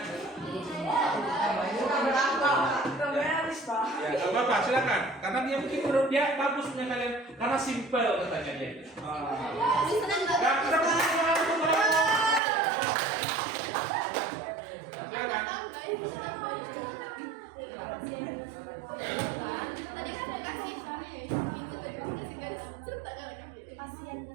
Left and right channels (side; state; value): left; drops out; at 12.4 s